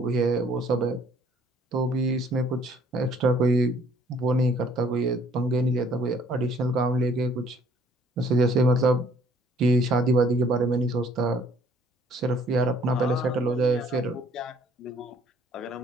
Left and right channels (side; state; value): both; normal; correlation 0.60